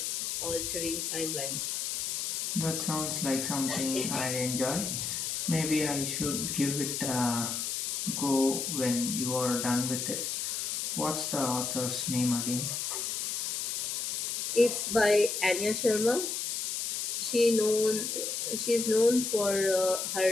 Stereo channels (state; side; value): noise; left; hiss, 2 dB below the sound